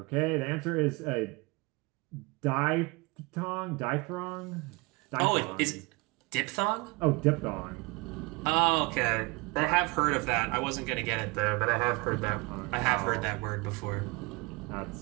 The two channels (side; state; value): left; quieter; 26.4 dB